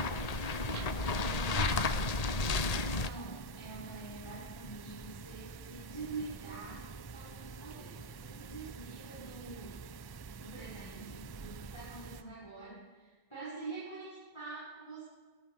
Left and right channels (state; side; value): late; right; 1.8 ms